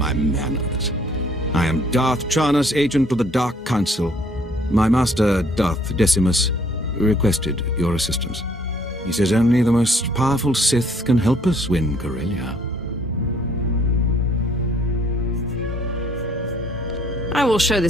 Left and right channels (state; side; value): normal; both; correlation 0.61